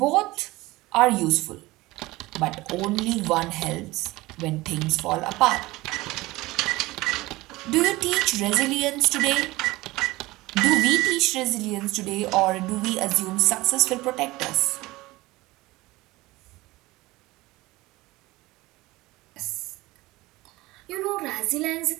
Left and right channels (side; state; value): left; quieter; 19.9 dB